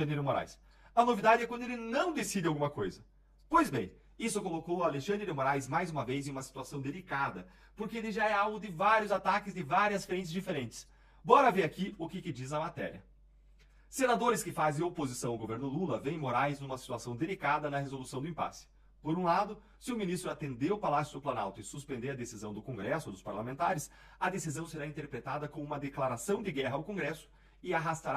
de Moraes. A novidade é quando ele não decide alguma coisa. Pois bem, isso colocou o Alexandre de Moraes mais uma vez em uma situação delicada, porque ele já é alvo de vários ataques de várias frentes diferentes. Bora ver aqui o que diz a matéria. Senadores que fazem oposição ao governo Lula veem Moraes numa situação delicada na resolução do impasse. Por um lado, se o ministro atender o Palácio do Planalto e suspender a decisão do Congresso ou dos parlamentares, a decisão será interpretada como uma declaração de guerra ao Congresso e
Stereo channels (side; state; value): both; identical; correlation 1.00